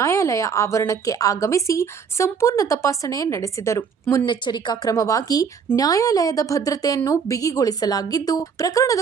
ಆವರಣಕ್ಕೆ ಆಗಮಿಸಿ ಸಂಪೂರ್ಣ ತಪಾಸಣೆ ನಡೆಸಿದರು. ಮುನ್ನೆಚ್ಚರಿಕಾ ಕ್ರಮವಾಗಿ ನ್ಯಾಯಾಲಯದ ಭದ್ರತೆಯನ್ನು ಬಿಗಿಗೊಳಿಸಲಾಗಿದ್ದು,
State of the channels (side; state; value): left; quieter; 6.3 dB